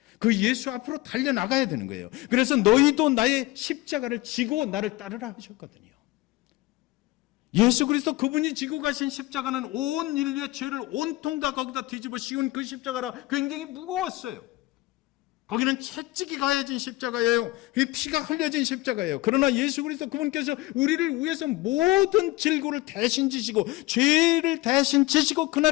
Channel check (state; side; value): quieter; right; 19.3 dB